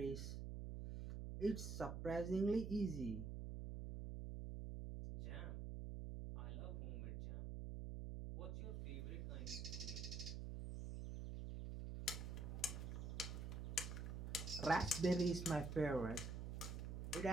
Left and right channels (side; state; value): right; noise; hum, 4 dB below the sound